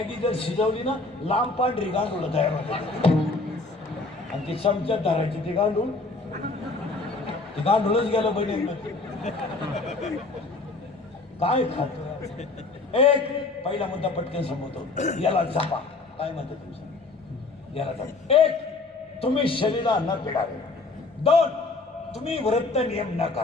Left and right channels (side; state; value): right; quieter; 3.5 dB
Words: जर शिजवली ना लांब पांढरी गांडूळ तयार होते. आणि ती चमच्यात धरायची ती गांडूळ. ती गांडूळच गेलं बहिणी. काय खातो. एक पहिला मुद्दा पटकन संपवतो. याला जपा. काय म्हणतो तुमचं. याला जपा. 1 तुम्ही शरीराला न पिडावे. 2 तुम्ही व्रत नियम न